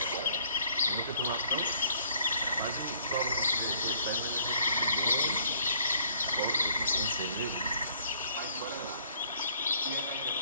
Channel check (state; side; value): inverted; both; correlation -0.60